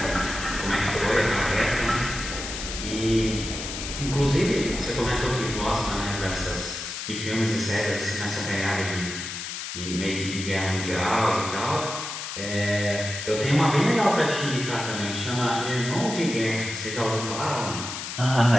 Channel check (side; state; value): left; noise; hiss, 7 dB below the sound